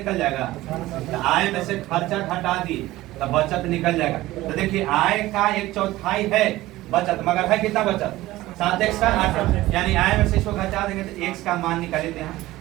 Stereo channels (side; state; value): left; quieter; 17.1 dB